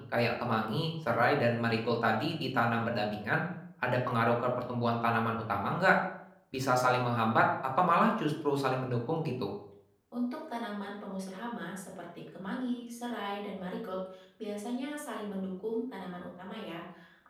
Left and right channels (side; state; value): both; identical; correlation 1.00